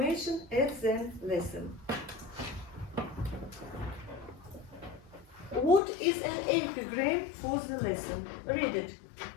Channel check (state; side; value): drops out; right; at 5.8 s